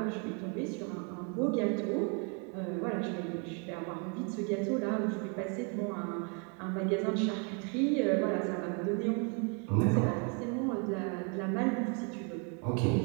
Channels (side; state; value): left; quieter; 35.4 dB